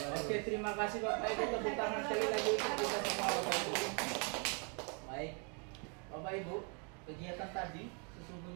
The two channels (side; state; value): left; quieter; 37.4 dB